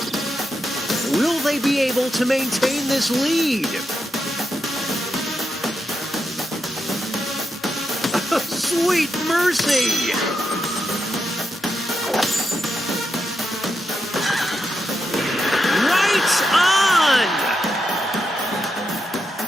Will they be able to maintain this lead? Sweet mercy! Right on!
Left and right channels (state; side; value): normal; both; correlation 0.85